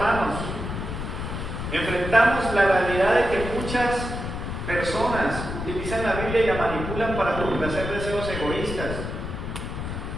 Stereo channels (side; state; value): left; noise; rumble, 5 dB below the sound